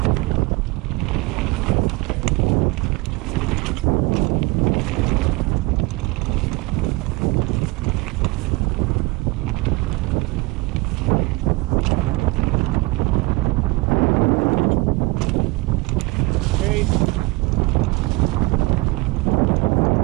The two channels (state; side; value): quieter; left; 23.5 dB